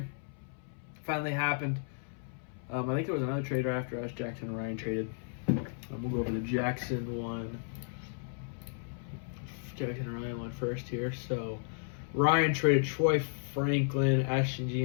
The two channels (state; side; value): silent; right; 55 dB below the other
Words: Finally happened. I think there was another trader after us. Jackson and Ryan traded. We'll go over the Jackson one. Jackson and Ryan went first here. So Ryan traded Troy Franklin, Ashton